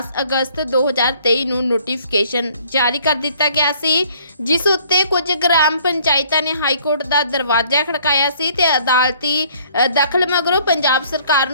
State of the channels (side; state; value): both; inverted; correlation -0.59